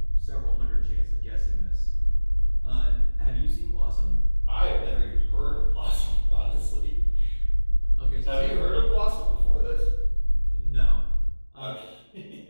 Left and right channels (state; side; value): inverted; both; correlation -1.00